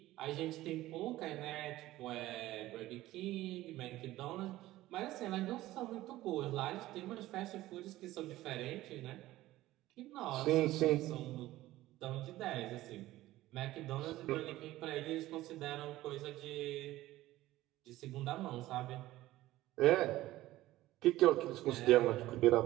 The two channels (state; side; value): quieter; left; 16.2 dB